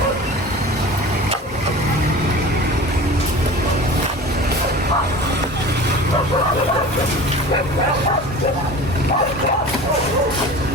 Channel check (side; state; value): both; normal; correlation 0.38